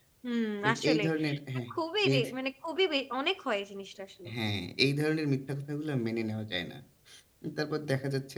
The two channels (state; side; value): identical; both; correlation 1.00